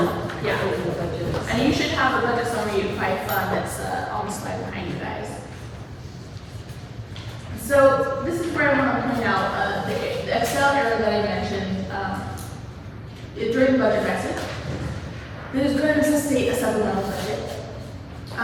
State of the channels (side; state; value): both; identical; correlation 1.00